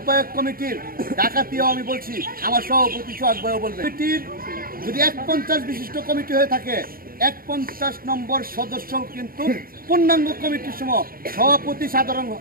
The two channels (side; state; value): left; late; 0.42 ms